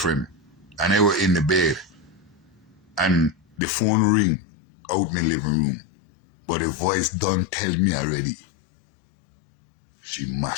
and I was in the bed. And the phone ring out in the living room. But the voice done tell me already. She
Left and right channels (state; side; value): drops out; right; at 3.6 s